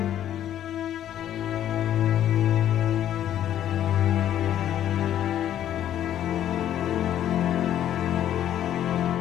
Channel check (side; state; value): right; quieter; 11.1 dB